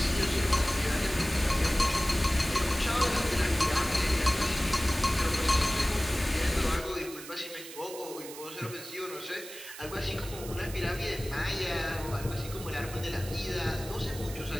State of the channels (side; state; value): right; noise; hiss, 13 dB below the sound